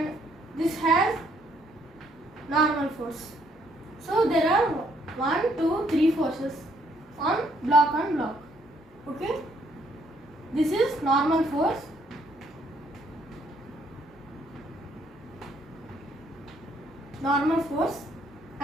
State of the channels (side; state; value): both; normal; correlation 0.68